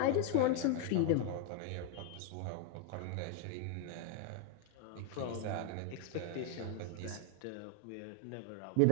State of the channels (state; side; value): different; both; correlation 0.00